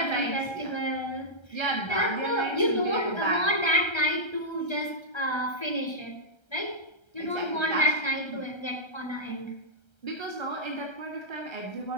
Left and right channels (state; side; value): late; right; 1.3 ms